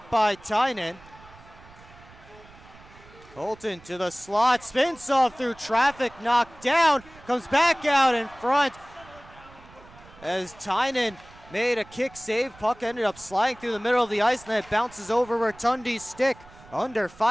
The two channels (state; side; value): noise; right; rumble, 23 dB below the sound